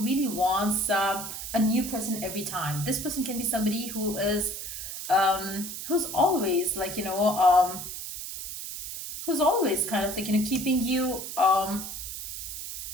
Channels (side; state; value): right; noise; hiss, 7 dB below the sound